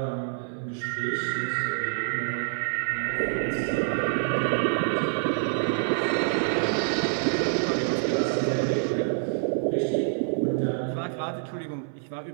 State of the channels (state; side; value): silent; left; 57 dB below the other